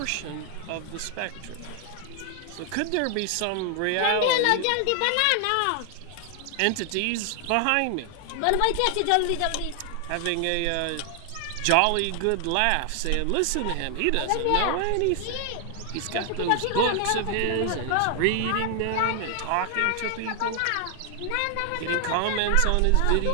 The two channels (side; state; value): both; different; correlation 0.00